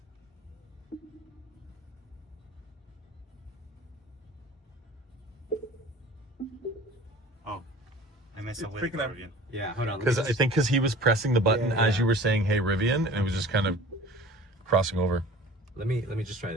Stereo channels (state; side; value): normal; both; correlation 0.43